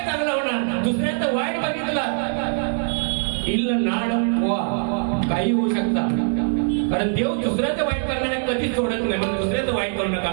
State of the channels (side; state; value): left; silent; digital silence